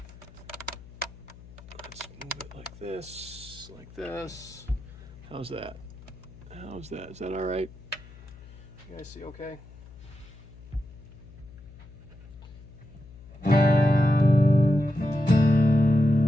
Let's move it like this, like this. How's that? How's that? Is that all right? You guys see okay?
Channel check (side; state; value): left; noise; hum, 19 dB below the sound